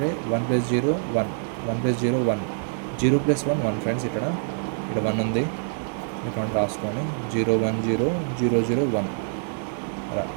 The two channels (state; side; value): silent; left; digital silence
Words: 1 + 0 1 1 + 0 1 0 + 1 1 ఫ్రెండ్స్. ఇక్కడ 1 ఉంది. ఇక్కడ రాసుకోండి. 0 1 0 0 0 1 అలా.